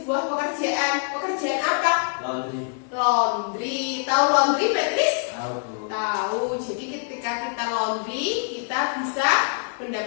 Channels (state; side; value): silent; right; 59 dB below the other